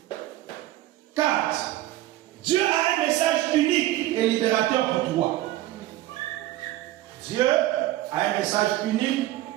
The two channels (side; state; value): left; quieter; 15.3 dB